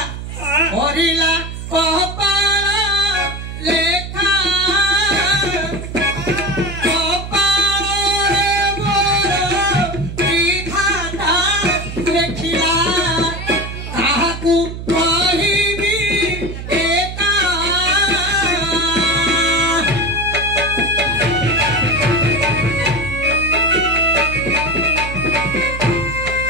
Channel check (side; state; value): right; noise; hum, 8 dB below the sound